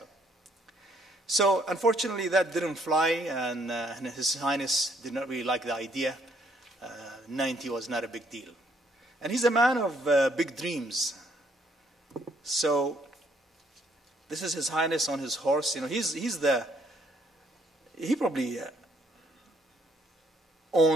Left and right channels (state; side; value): normal; both; correlation 0.67